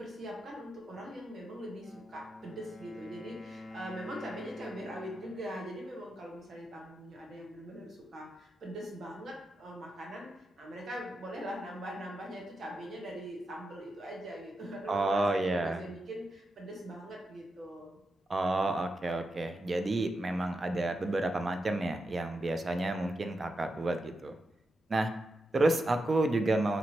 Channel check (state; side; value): normal; both; correlation 0.87